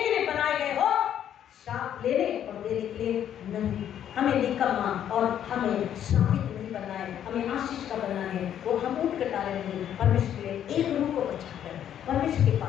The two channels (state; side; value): quieter; right; 10.1 dB